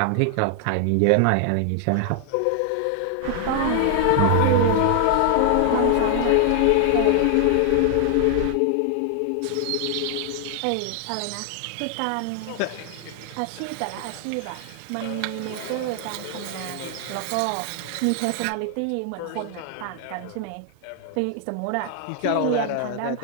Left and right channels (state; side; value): different; both; correlation 0.00